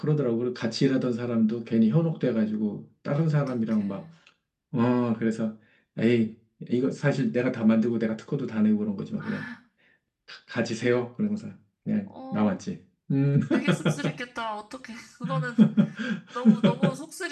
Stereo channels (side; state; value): both; identical; correlation 1.00